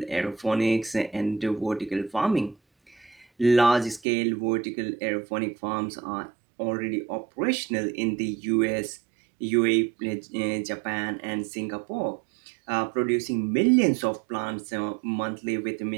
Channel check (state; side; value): drops out; left; at 4.0 s